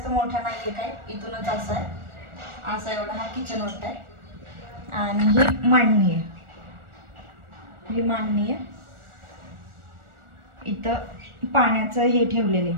मोठा नाहीये काय, इथूनच असं आहे, असा एवढा हा किचन मोठा आहे. आणि ही मांडणी आहे, ही मांडणी आहे. इथं पाण्याचं हे ठेवलेले,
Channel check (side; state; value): left; late; 1.4 ms